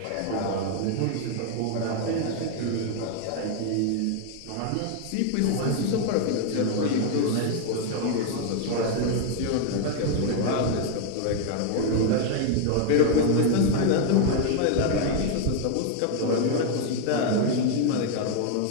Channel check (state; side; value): different; both; correlation 0.00